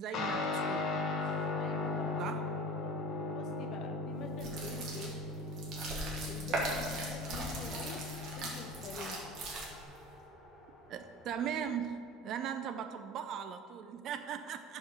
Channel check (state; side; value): normal; both; correlation 0.35